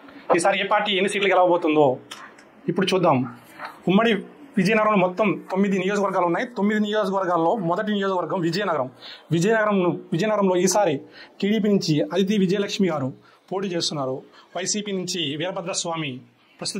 ఈసారి ఏ పార్టీ ఎన్ని సీట్లు గెలవబోతుందో ఇప్పుడు చూద్దాం. ఉమ్మడి విజయనగరంలో మొత్తం 9 నియోజకవర్గాలు ఉన్నాయి. 9 నియోజకవర్గాల్లో మొదటి నియోజకవర్గం విజయనగరంలో ఈసారి టీడీపీ నుంచి అదితి విజయలక్ష్మి గారు పోటీ చేస్తున్నారు. వైసీపీ నుంచి వీరభద్రస్వామి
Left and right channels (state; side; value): identical; both; correlation 1.00